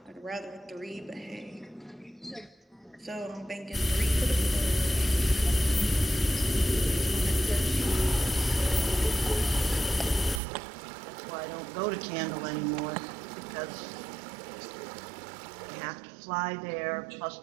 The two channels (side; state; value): left; drops out; at 10.4 s